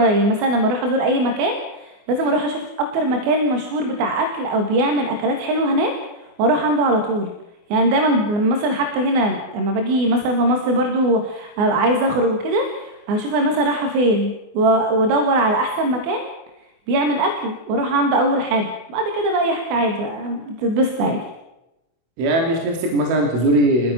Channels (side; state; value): left; late; 24 ms